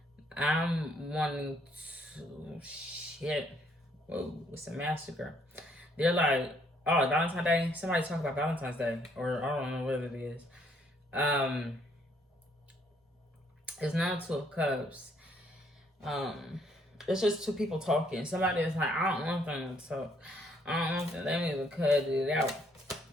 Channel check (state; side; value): normal; both; correlation 0.67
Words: I'm wanting to, shit. Whoa, it's a massacre. They're like, oh, Valentine's Day? Somebody talk about Valentine's Day. Or I don't know what it is. It's not Two of Cups. It's just two people talking. Somebody is like, I don't want them to talk. I don't want them. They need to cut it out.